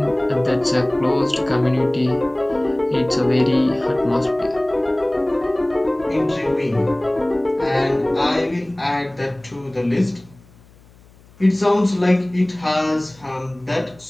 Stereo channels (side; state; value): left; noise; hum, 27 dB below the sound